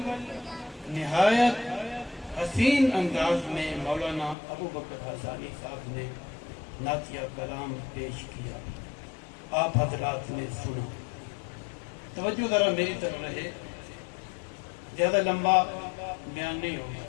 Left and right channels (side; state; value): right; drops out; at 4.4 s